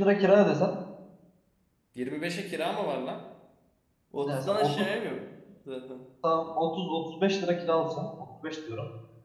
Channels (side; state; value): both; identical; correlation 1.00